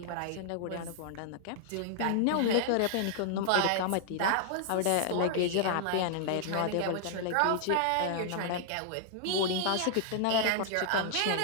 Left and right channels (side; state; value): both; different; correlation -0.01